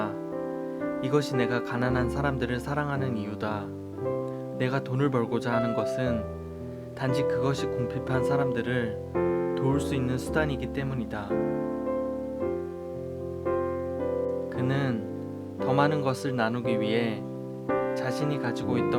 이것이 내가 가난한 사람들을 사랑하는 이유다. 내가 돈을 벌고자 하는 것은 단지 그것이 궁핍한 사람들을 도울 수 있는 수단이기 때문이다. 그는 더 많은 것을 나누기 위해 자신이 가지고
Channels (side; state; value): both; identical; correlation 1.00